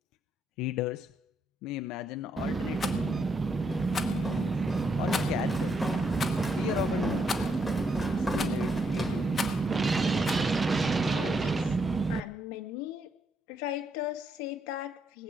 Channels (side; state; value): both; normal; correlation 0.76